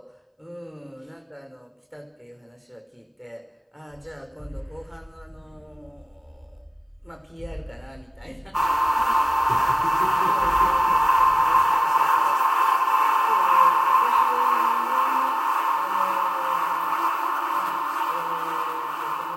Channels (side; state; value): both; identical; correlation 1.00